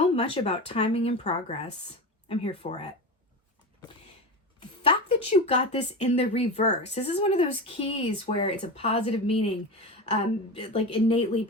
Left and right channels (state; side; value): normal; both; correlation 0.24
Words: much about timing and progress? I'm here for it. The fact that you got this in the reverse, this is one of those keys where it's a positive meaning, like innately